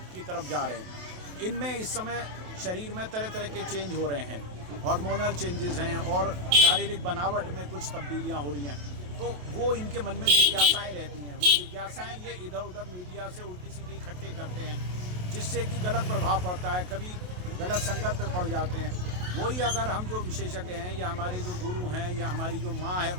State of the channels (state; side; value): late; left; 28 ms